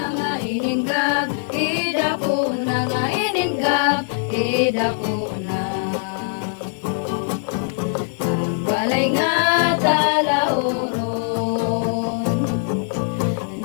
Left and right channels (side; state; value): right; silent; digital silence